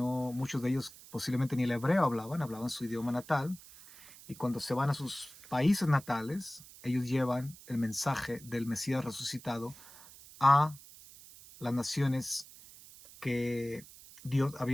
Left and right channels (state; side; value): noise; right; hiss, 19 dB below the sound